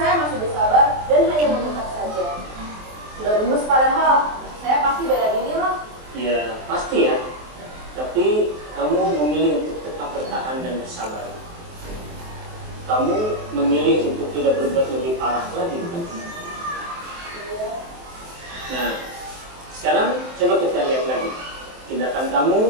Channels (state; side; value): late; left; 23 ms